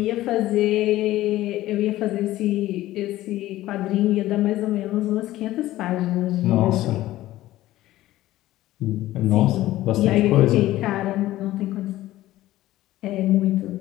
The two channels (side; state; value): right; quieter; 15.5 dB